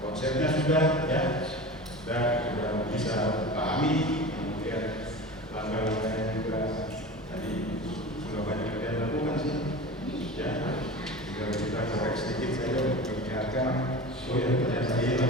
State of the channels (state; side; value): normal; both; correlation 0.32